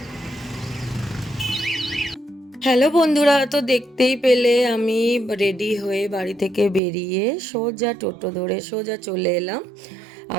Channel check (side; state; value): left; drops out; at 6.8 s